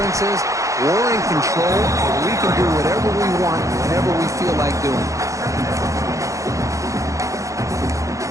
is we're in control, and we can do whatever we want, whenever we feel like doing it.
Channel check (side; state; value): left; late; 0.15 ms